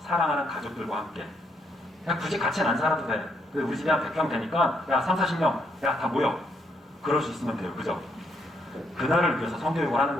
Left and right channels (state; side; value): normal; both; correlation 0.75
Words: 사랑하는 가족들과 함께. 그냥 굳이 같이는 안 살아도 돼. 우리 집에 한 100평 되니까 야 3, 40명 야 다 모여. 그럴 수 있으면 돼요. 그죠? 그날을 위해서 성교육을 하는